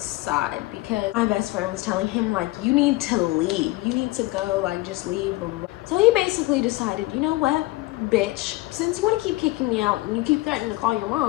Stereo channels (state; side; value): quieter; right; 20.4 dB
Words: because my best friend was telling him like, you need to leave, you need to go, like just leave, blah, blah, blah. So he basically decided, you know what, bitch, since you want to keep kicking me out and you keep threatening to call your